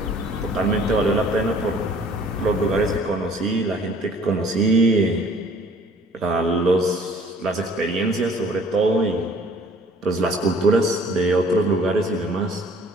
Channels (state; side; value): normal; both; correlation 0.55